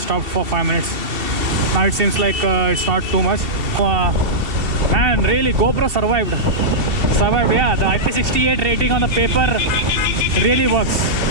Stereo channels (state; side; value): late; left; 2.7 ms